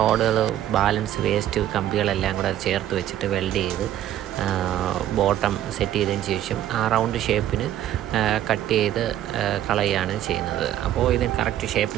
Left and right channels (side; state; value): left; quieter; 12.1 dB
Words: ബാലൻസ്, വേസ്റ്റ് കമ്പികളെല്ലാം കൂടെ ചേർത്ത് വെച്ചിട്ട് വെൽഡ് ചെയ്ത് ബോട്ടം സെറ്റ് ചെയ്തതിന് ശേഷം ആ റൗണ്ട് ഷേപ്പിന് കട്ട് ചെയ്ത് കളയുകയാണ് ചെയ്യുന്നത്. അപ്പോൾ ഇതിന് കറക്റ്റ്